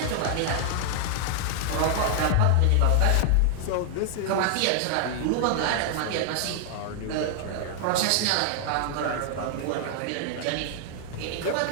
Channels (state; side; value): different; both; correlation 0.00